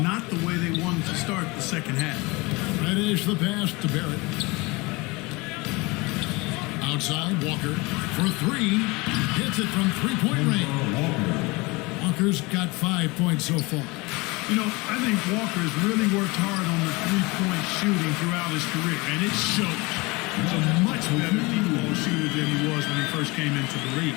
not the way they wanted to start the second half. Reddish the pass to Barrett. Outside, Walker for 3. Hits it from 3-point range. Walker's got 5 points so far. You know, I think Walker has really worked hard on the 3-point shooting throughout his career, and it shows. He's a much better deep ball shooter than he was when he first came into the league.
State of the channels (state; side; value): quieter; right; 24.7 dB